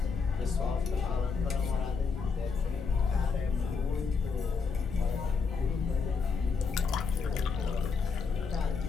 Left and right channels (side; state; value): right; quieter; 5.2 dB